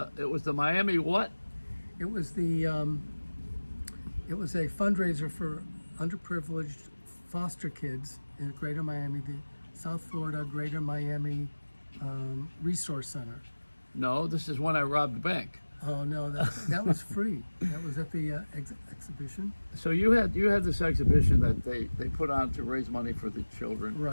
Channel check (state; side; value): inverted; both; correlation -1.00